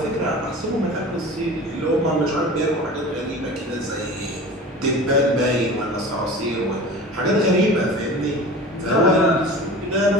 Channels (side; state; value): both; normal; correlation 0.37